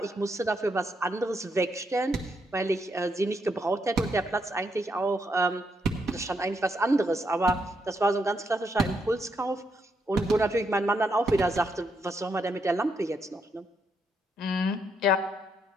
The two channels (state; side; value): normal; both; correlation 0.78